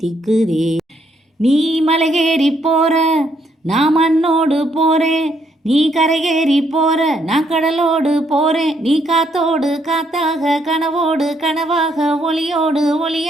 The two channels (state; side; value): normal; both; correlation 0.72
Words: நீ மலையேறி போற நான் மண்ணோடு போறேன், நீ கரையேறி போற நான் கடலோடு போறேன். நீ காத்தோடு காத்தாக கனவோடு கனவாக ஒளியோடு